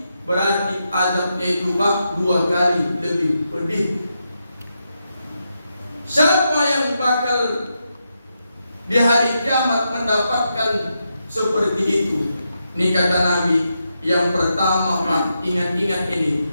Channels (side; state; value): both; inverted; correlation -0.85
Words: berarti adabnya itu Pak 2 kali lebih pedih. Siapa yang bakal di hari kiamat mendapatkan seperti itu? Ini kata Nabi, yang pertama Pak, ingat-ingat ini,